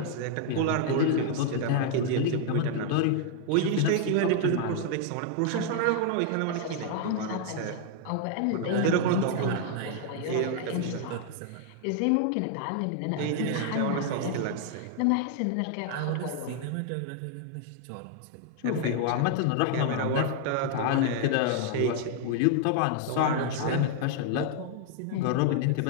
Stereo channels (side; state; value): both; different; correlation 0.00